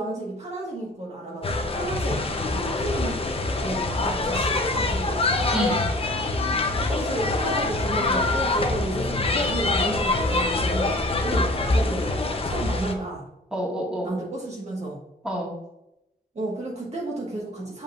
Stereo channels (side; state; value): both; normal; correlation 0.47